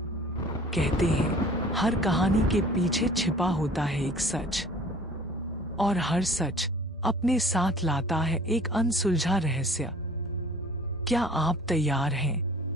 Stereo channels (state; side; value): normal; both; correlation 0.49